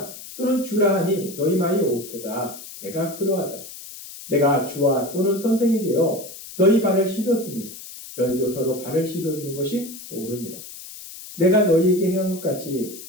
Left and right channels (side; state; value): left; noise; hiss, 14 dB below the sound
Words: 또는 주라 하니 너희 말이 옳도다. 내가 그러하다. 내가 주와 또는 선생이 되어 너희 발을 씻었으니 너희도 서로 발을 씻어주는 것이 옳으니라. 내가 너희에게 행한 것 같이